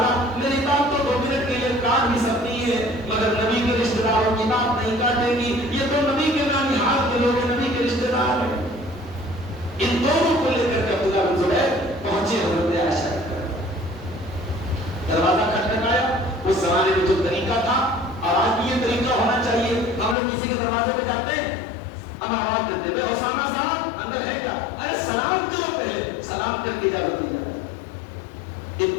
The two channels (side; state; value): right; drops out; at 20.2 s